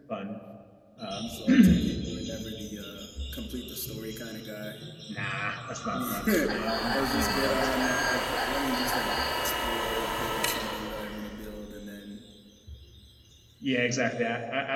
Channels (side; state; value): both; identical; correlation 1.00